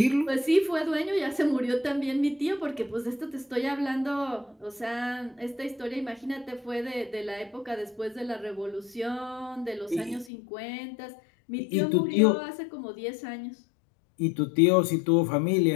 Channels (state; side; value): drops out; right; at 10.3 s